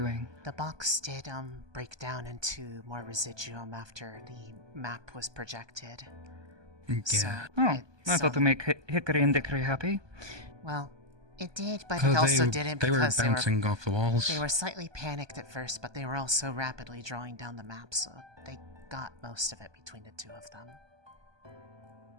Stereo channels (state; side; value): late; left; 1.2 ms